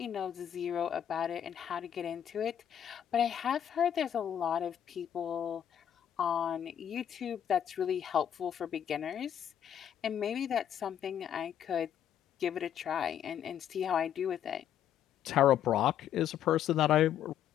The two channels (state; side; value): quieter; right; 9.7 dB